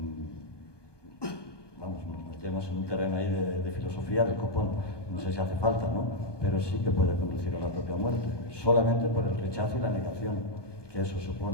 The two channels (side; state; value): right; late; 1.2 ms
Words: metemos en un terreno ahí de filosofía del copón. No sé si hace falta, ¿no? Pero sí que puede conducir a la propia muerte, solamente por el rechazo y la negación que eso